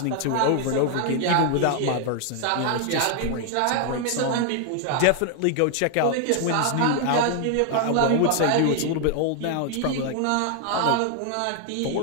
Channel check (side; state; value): both; different; correlation 0.00